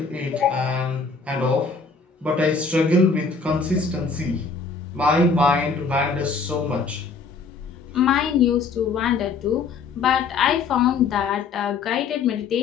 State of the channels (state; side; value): quieter; right; 4.8 dB